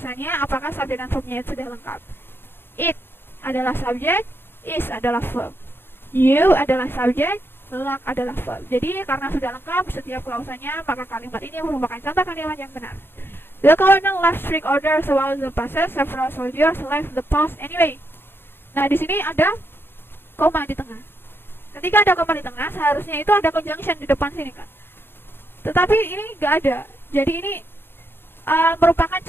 apakah subjek dan verbnya itu sudah lengkap. It adalah subjek, is adalah verb. You adalah subjek, luck adalah verb. Jadi karena sudah lengkap setiap klausanya, maka kalimat ini merupakan contoh kalimat yang benar. The colonel left strict orders about the passes. Several soldiers left the post anyway. Nah, di sini ada koma di tengah. Ketika ada koma di tengah, seharusnya itu ada conjunction di depan sini kan. Tetapi ini nggak ada. Jadi ini merupakan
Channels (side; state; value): right; late; 0.11 ms